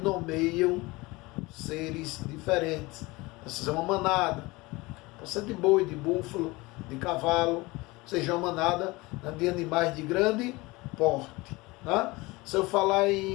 seres diferentes. Seja uma manada, pode ser de boi, de búfalo, de cavalo, seja uma manada, né, de animais de grande porte. Né? Se eu falar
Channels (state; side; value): quieter; right; 22.6 dB